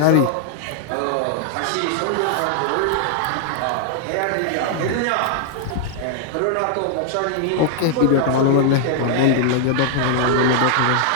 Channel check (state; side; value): different; both; correlation 0.00